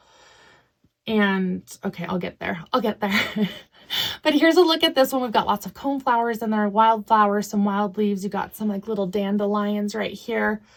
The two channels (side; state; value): both; identical; correlation 1.00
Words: And okay, I'll get there. But here's a look at this one. We've got lots of cone flowers in there, wildflowers, some wild leaves. You got some like little dandelions right here.